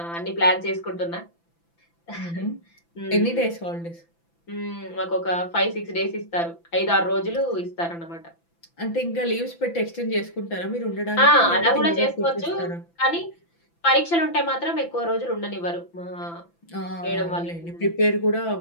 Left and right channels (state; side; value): late; right; 5.9 ms